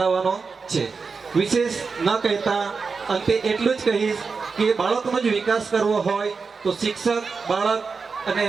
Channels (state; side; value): quieter; left; 4.9 dB